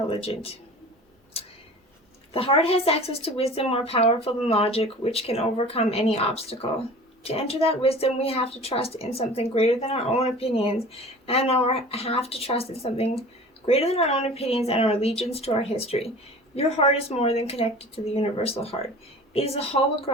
The heart has access to wisdom more powerful than logic, which can overcome any obstacle. To enter that wisdom, we have to trust in something greater than our own opinions, and have to trust in something greater than our own opinions and our allegiance to our history. Your heart is more than connected to the universal heart. It is a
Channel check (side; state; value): both; normal; correlation 0.41